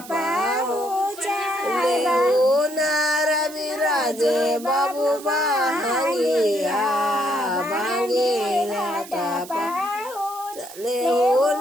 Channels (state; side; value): noise; right; hiss, 16 dB below the sound